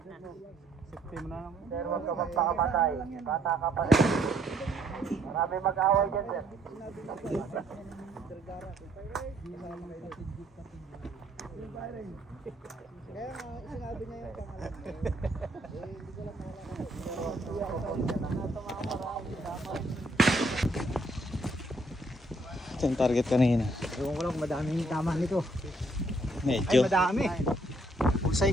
Sir, huwag ka magpakamatay. Bata ka pa rin. Marami mag-away dyan, sir. Ito yung target kanina. Ewan ko lang kung madami yung tama nito. Medyo. Ay, madami. Pusay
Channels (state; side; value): normal; both; correlation 0.68